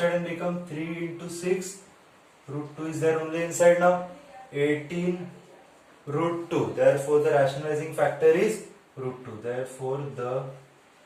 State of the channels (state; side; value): identical; both; correlation 1.00